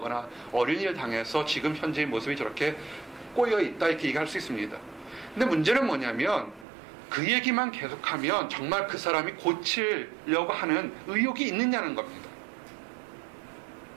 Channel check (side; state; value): left; drops out; at 6.7 s